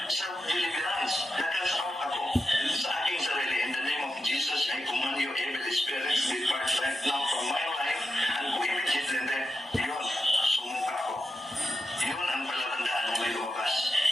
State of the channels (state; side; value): normal; both; correlation 0.89